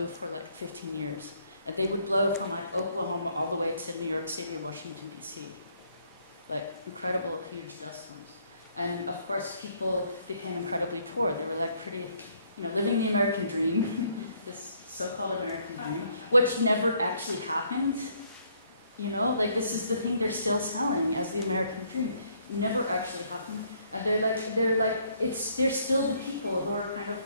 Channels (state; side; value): inverted; both; correlation -0.67